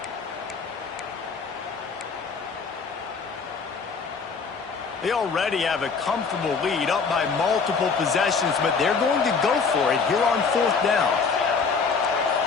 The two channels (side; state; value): right; quieter; 5.2 dB